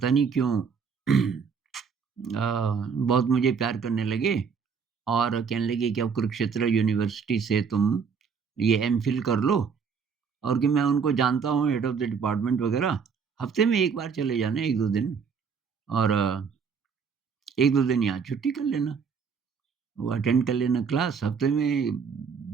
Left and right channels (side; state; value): left; quieter; 6.1 dB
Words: नहीं क्यों बहुत मुझे प्यार करने लगे और कहने लगे कि अब कुरुक्षेत्र यूनिवर्सिटी से तुम ये एमफ़िल कर लो और कि मैं उनको जानता हूँ हेड ऑफ़ द डिपार्टमेंट वग़ैरह, हफ़्ते में 1 बार चले जाना 1-2 दिन और 1-2 दिन यहाँ छुट्टी कर लेना। वो अटेंड कर लेना क्लास हफ़्ते में